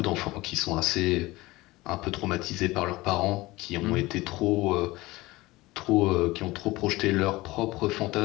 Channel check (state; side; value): quieter; right; 20.1 dB